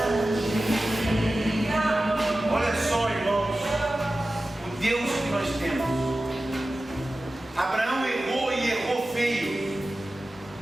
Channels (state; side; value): normal; both; correlation 0.95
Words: Olha só, irmãos, o Deus que nós temos. Abraão errou e errou feio.